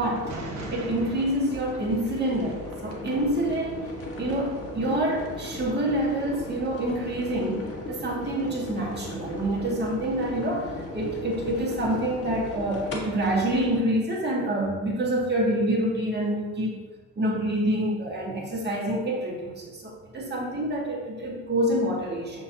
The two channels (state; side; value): normal; both; correlation 0.22